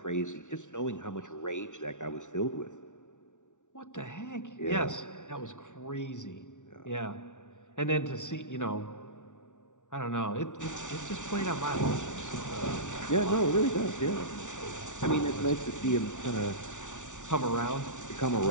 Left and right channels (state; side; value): late; right; 0.86 ms